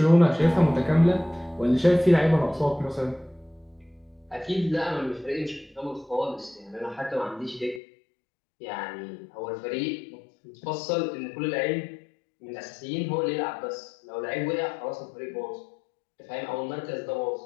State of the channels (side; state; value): right; drops out; at 7.8 s